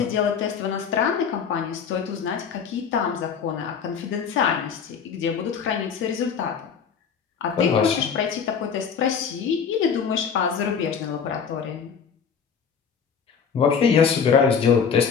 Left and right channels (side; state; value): right; quieter; 6.7 dB